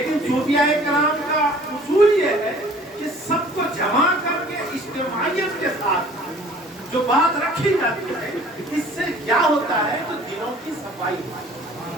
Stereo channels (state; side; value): normal; both; correlation 0.51